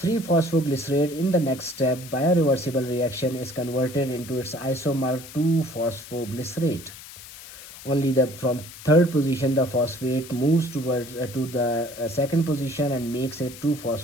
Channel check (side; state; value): left; noise; hiss, 16 dB below the sound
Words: in the next step, by a reversible reaction, is converted into its isomer 2-phosphoglycerate. Only from third position the phosphate moves towards to the second position and makes it